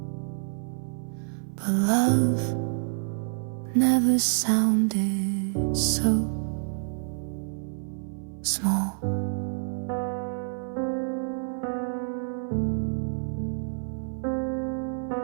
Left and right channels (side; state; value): left; silent; 55 dB below the other